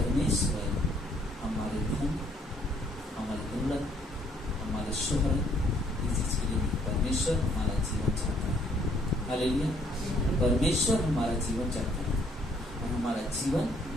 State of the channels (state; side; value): normal; both; correlation 0.65